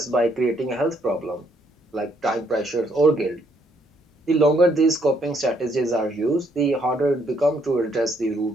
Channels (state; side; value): normal; both; correlation 0.70